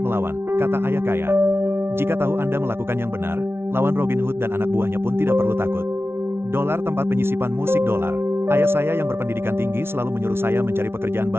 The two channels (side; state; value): left; late; 0.12 ms